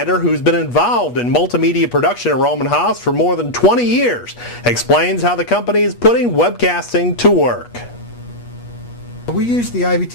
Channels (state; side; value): late; right; 8.3 ms